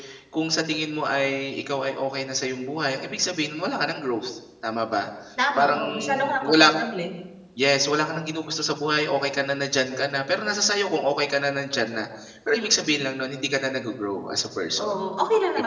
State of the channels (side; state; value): both; identical; correlation 1.00